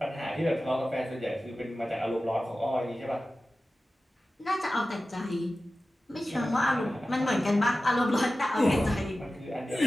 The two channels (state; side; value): normal; both; correlation 0.95